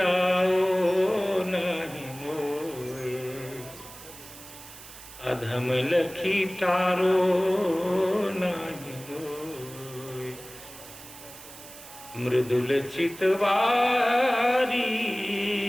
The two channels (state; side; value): noise; right; hiss, 17 dB below the sound